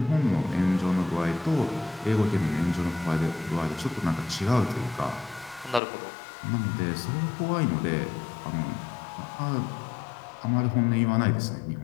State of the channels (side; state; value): right; drops out; at 5.8 s